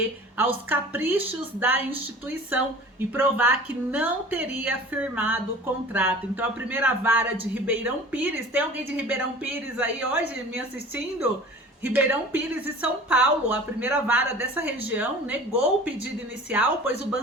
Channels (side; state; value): both; normal; correlation 0.42